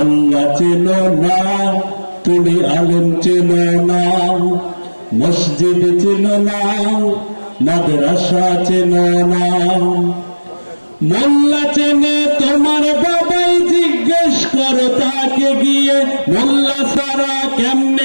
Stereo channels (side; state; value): both; inverted; correlation -1.00